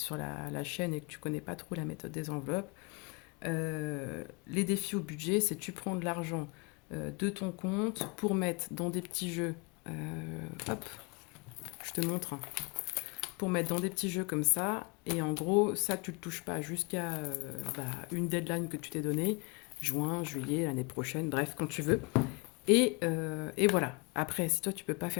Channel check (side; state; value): right; quieter; 30.0 dB